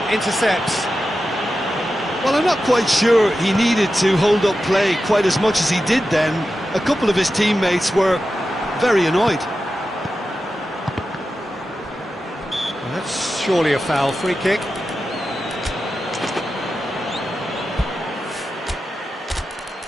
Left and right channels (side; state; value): both; normal; correlation 0.91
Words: intercepts. Well, I'm not quite sure he needed to hold up play quite as much as he did then. A couple of his teammates were very annoyed. Well, that's surely a foul. Free kick.